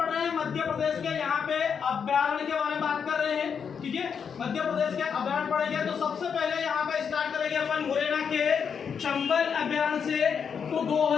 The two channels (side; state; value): right; quieter; 6.8 dB